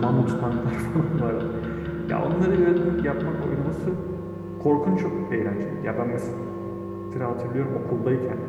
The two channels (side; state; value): both; identical; correlation 1.00